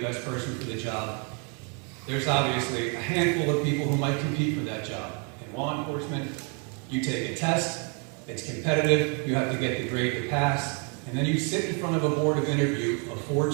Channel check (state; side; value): quieter; left; 37.0 dB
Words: best person for the job. There's obviously a handful of people who might compete for that job. In law enforcement, you take a test, it's competitive, you have to get the grade to pass, and then you sit in front of a board of interview of 4